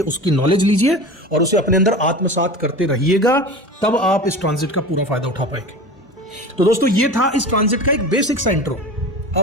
उसकी नॉलेज लीजिए और उसे अपने अंदर आत्मसात करते रहिएगा। तब आप इस ट्रांजिट का पूरा फायदा उठा पाएंगे। तो दोस्तों, ये था इस ट्रांजिट का एक बेसिक सा इंट्रो।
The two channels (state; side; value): normal; both; correlation 0.33